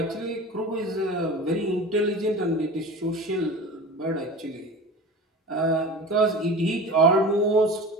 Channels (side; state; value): both; normal; correlation 0.34